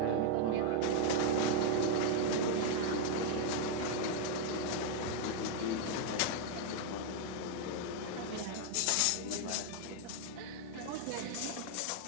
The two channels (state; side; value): different; both; correlation 0.00